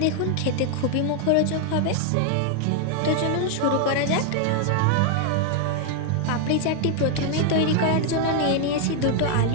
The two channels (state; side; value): different; both; correlation 0.00